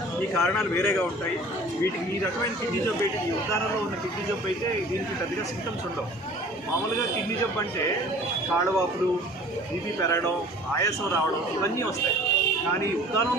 ఈ కారణాలు వేరేగా ఉంటాయి. వీటికి ఈ రకమైన కిడ్నీ జబ్బు అయితే, ఈ ఉద్దానంలో ఉన్న కిడ్నీ జబ్బు అయితే దీనికి పెద్దగా సింటమ్స్ ఉండవు. మామూలుగా కిడ్నీ జబ్బు అంటే కాళ్ళవాపులు, బీపీ పెరగడం, ఆయాసం రావడం, ఇవన్నీ వస్తాయి. కానీ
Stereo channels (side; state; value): both; normal; correlation 0.47